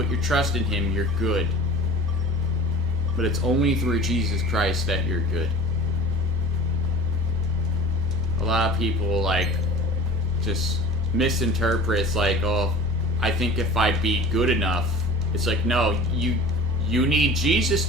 your trust in him, you're good. But it's only through Jesus Christ that you're good. A lot of people, like, just misinterpret. It's like, oh, I think if I be good enough. It's like, no, you need Jesus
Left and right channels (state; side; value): normal; both; correlation 0.39